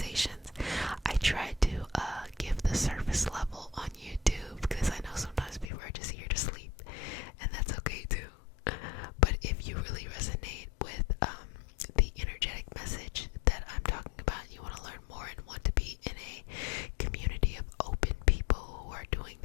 I try to give the surface level on YouTube because I know sometimes people are just here to sleep, and that's okay too. But if you really resonate with the energetic message that I'm talking about, and you want to learn more and want to be in a community of open people who are doing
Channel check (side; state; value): right; drops out; at 5.7 s